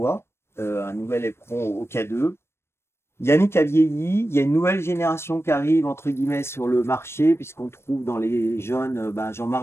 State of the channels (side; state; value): right; late; 0.12 ms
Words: un nouvel éperon au K2. Yannick a vieilli, il y a une nouvelle génération qui arrive, entre guillemets, sur le marché, puisqu'on trouve dans les jeunes